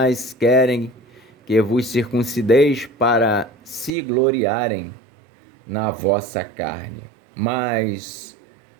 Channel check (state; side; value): drops out; left; at 3.9 s